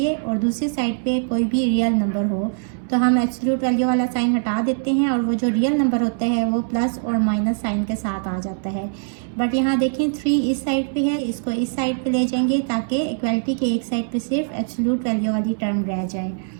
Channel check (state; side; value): silent; left; 64 dB below the other